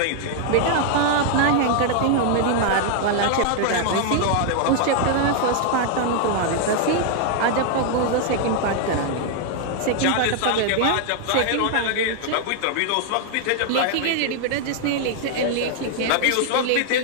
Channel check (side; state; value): both; different; correlation 0.00